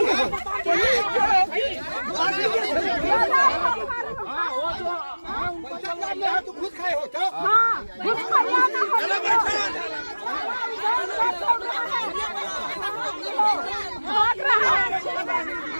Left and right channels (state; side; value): inverted; both; correlation -1.00